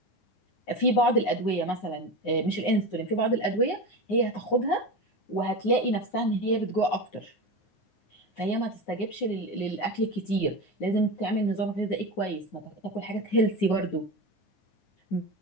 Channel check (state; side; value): late; right; 9.5 ms